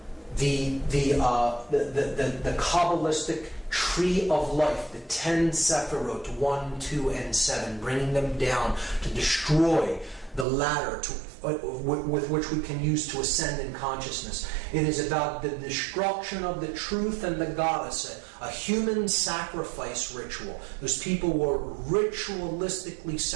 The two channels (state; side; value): drops out; left; at 10.5 s